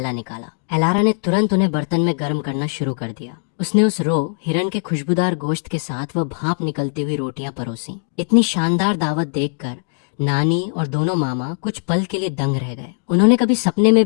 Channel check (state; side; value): silent; right; digital silence